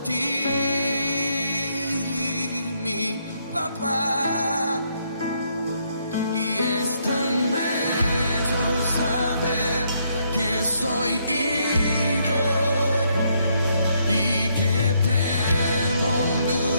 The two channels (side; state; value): both; inverted; correlation -0.73